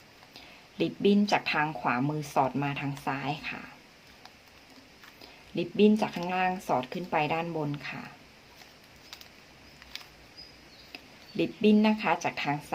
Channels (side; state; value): both; identical; correlation 1.00